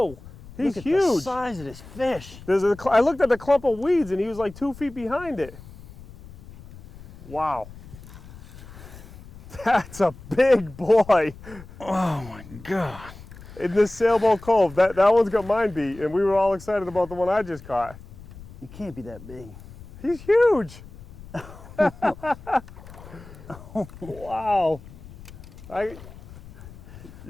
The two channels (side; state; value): left; noise; rumble, 18 dB below the sound